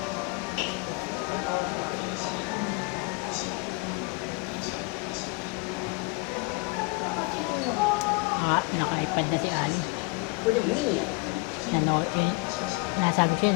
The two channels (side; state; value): right; quieter; 28.2 dB